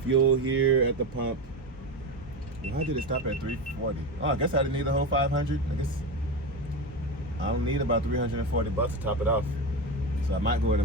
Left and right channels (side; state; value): both; normal; correlation 0.19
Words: fuel here at the pump. Why did it stop at 340? Oh, I guess I didn't need the whole 500. I guess I don't need about $340 to top it off. So I might go ahead